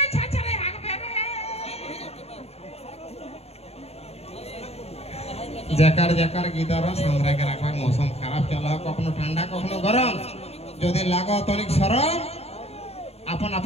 छाछरे हागबे रे जकार जकार गीदार सामरा के रखबा मौसम खराब चला कखनो ठंडा कखनो गरम যদি লাগো তনিক সরম আপন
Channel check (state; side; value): late; right; 0.30 ms